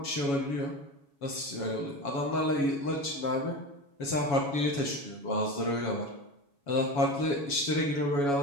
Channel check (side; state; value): right; late; 7.1 ms